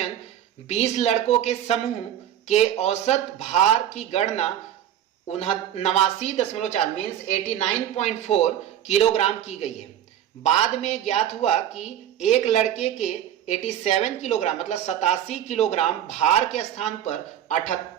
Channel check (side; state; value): left; quieter; 10.8 dB